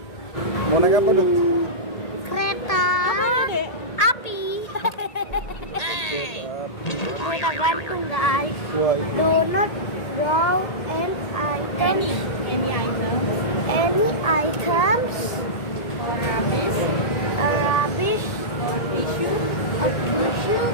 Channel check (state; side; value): late; right; 1.8 ms